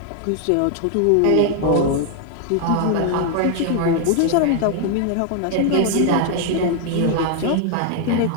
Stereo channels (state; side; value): different; both; correlation 0.00